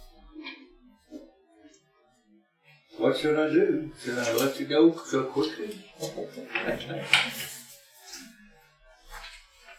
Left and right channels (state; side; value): identical; both; correlation 1.00